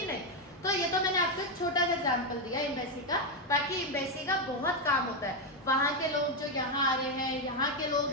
नहीं। तो ये तो मैंने आपको एक छोटा सा एग्जाम्पल दिया एम्बेसी का, बाकी एम्बेसी का बहुत काम होता है। वहाँ के लोग जो यहाँ आ रहे हैं, यहाँ के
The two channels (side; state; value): both; normal; correlation 0.05